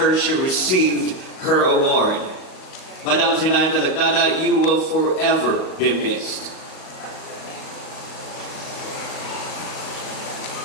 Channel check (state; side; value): late; right; 38 ms